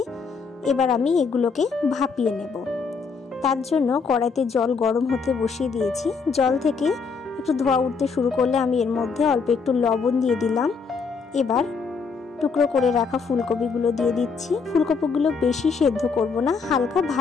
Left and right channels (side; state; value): right; quieter; 5.1 dB